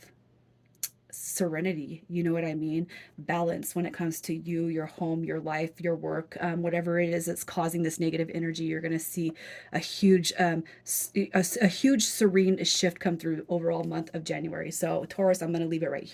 serenity. You know what I mean? Balance when it comes to you, your home, your life, your work, whatever it is that's causing this negative energy. You're going to see a huge a huge serene shift come through overall month of January. So Taurus, I'm going to leave it right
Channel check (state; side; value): identical; both; correlation 1.00